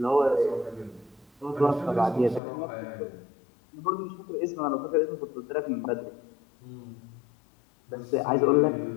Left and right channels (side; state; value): right; drops out; at 2.4 s